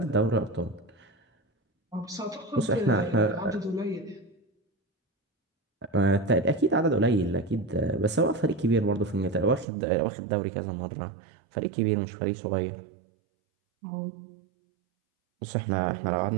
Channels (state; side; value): drops out; left; at 9.7 s